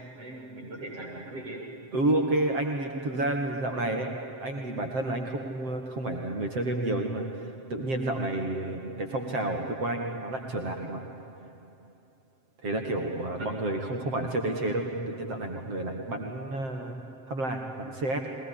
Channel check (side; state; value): left; late; 7.6 ms